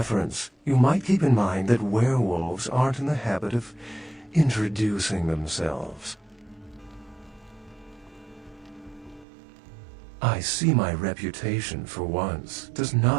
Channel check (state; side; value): drops out; left; at 9.2 s